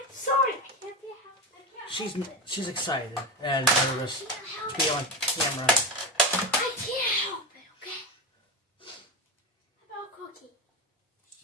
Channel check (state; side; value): normal; both; correlation 0.18